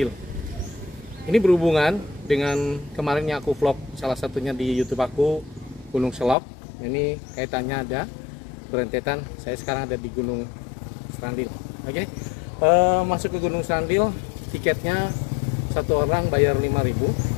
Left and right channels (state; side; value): drops out; right; at 6.4 s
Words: Ini berhubungan dengan kemarinnya aku vlog salah satunya di YouTube aku, Gunung Selok. Ini kaitannya ada berentetan. Saya sekarang ada di Gunung Serandil. Oke, masuk ke Gunung Serandil, tiketnya satu orang bayar